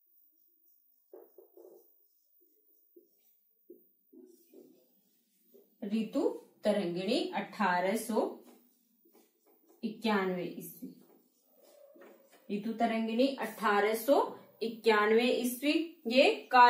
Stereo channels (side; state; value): both; identical; correlation 1.00